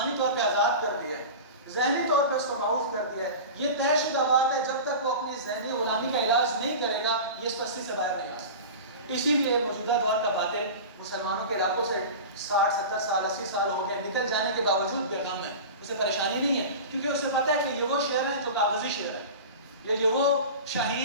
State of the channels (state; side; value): inverted; both; correlation -0.31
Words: طور پہ آزاد کر دیا ہے, ذہنی طور پہ اس کو معاف کر دیا ہے. یہ طے شدہ بات ہے, جب تک وہ اپنی ذہنی غلامی کا علاج نہیں کرے گا یہ اس پستی سے باہر نہیں آ سکتا. اسی لیے موجودہ دور کا باطل مسلمانوں کے علاقوں سے 60-70 سال 80 سال ہو گئے, نکل جانے کے باوجود بے غم ہے, اسے پریشانی نہیں ہے, کیونکہ اسے پتہ ہے کہ یہ وہ شعر ہیں جو کاغذی شعر ہے, یا یہ وہ